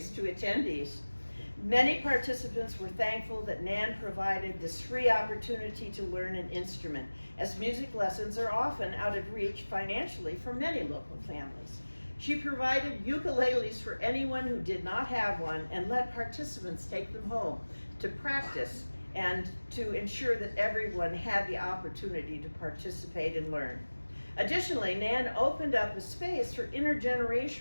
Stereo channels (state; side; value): inverted; both; correlation -1.00